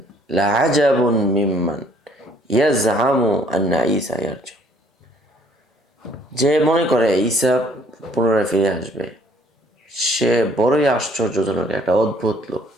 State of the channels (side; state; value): both; normal; correlation 0.60